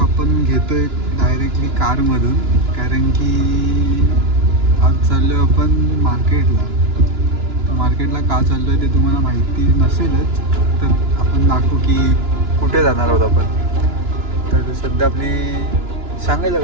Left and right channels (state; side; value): late; left; 2.9 ms